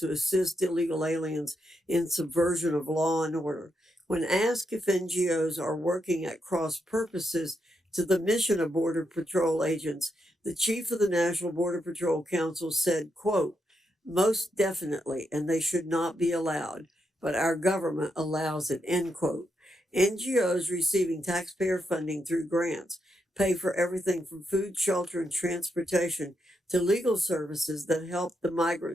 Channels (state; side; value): normal; both; correlation 0.82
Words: assist illegal aliens in subversion of law and order. When asked if NGOs are working at cross purposes to the mission of Border Patrol agents, the chief of the National Border Patrol Council said, quote, "Most definitely, and they should not be allowed, but our government allows it," end quote. NGOs receiving taxpayer funding through grants pay for everything from food, shelter, and transportation to legal services that help the